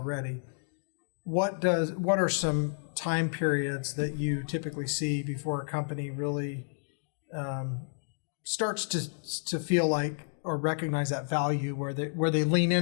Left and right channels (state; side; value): silent; right; digital silence